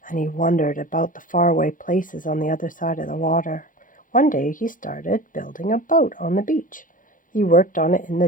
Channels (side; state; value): right; late; 0.39 ms